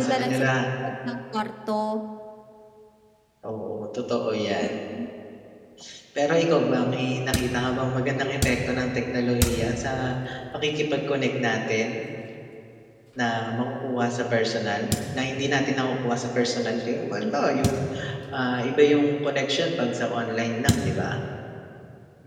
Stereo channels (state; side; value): identical; both; correlation 1.00